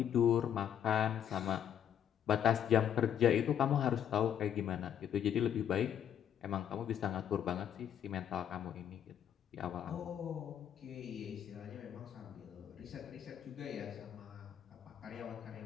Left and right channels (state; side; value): quieter; right; 9.5 dB